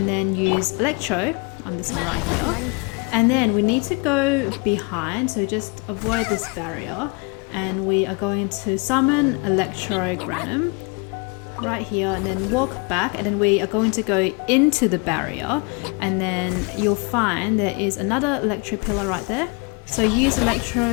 then use Electro on this one right here. And then we need to go behind, so just avoid this barrier, and we are going to summon Electro Granum right here, and then walk back, and then we are going to go into the barrier, and then you'll find there is another Electro pillar right there. So use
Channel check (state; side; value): quieter; right; 30.3 dB